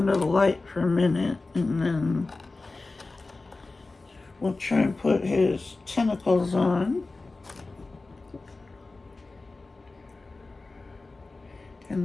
the light for a minute, and then we'll try and put his tentacles on.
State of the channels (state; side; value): quieter; right; 3.5 dB